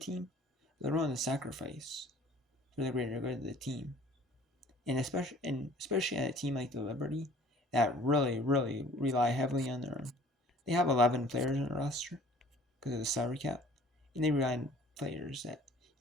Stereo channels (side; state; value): both; normal; correlation 0.51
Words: They're willing to sacrifice for the greater good of the team. And especially at a team like the Liberty that really, really rely heavily on they have 11 players on the roster because of the salary cap, and they rely on players that,